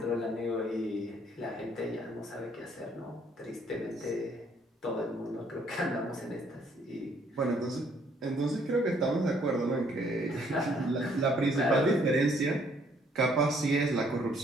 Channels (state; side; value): normal; both; correlation 0.65